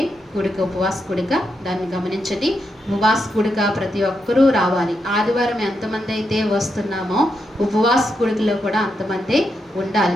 కూడిక, ఉపవాస కూడిక. దాన్ని గమనించండి. ఉపవాస కూడిక ప్రతి ఒక్కరూ రావాలి. ఆదివారం ఎంతమంది అయితే వస్తున్నామో ఉపవాస కూడికలో కూడా అంతమంది ఉండాలి.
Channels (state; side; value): normal; both; correlation 0.83